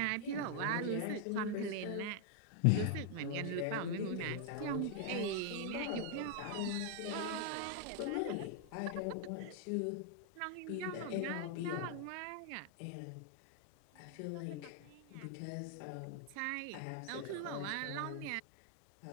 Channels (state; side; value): different; both; correlation 0.00